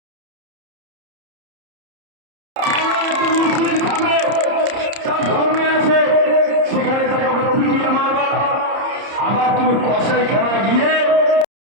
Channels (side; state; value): left; late; 30 ms